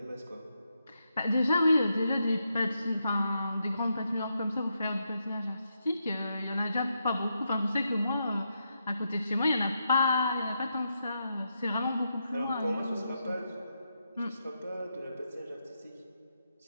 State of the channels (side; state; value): both; inverted; correlation -0.83